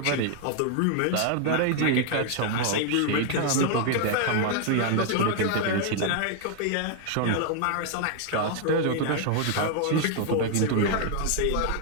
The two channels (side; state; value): both; different; correlation 0.00